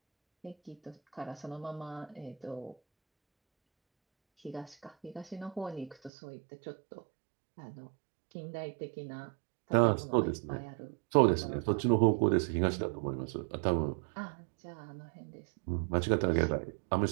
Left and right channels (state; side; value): drops out; left; at 6.1 s